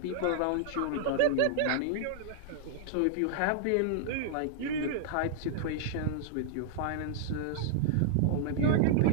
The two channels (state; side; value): different; both; correlation -0.01